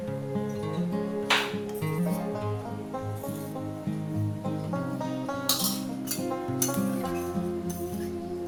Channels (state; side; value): identical; both; correlation 1.00